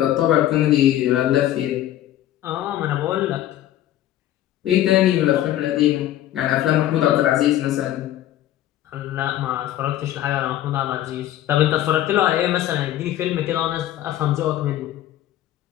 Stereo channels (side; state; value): right; quieter; 13.0 dB